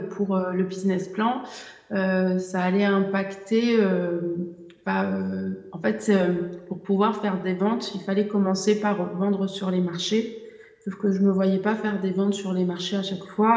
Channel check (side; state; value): both; identical; correlation 1.00